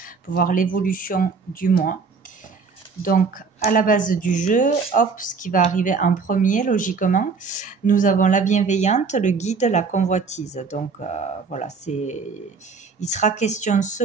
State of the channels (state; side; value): quieter; left; 5.0 dB